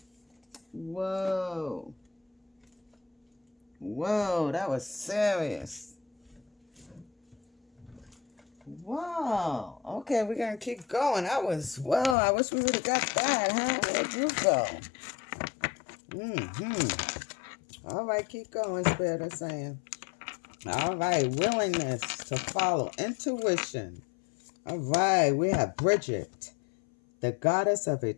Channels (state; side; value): drops out; right; at 12.2 s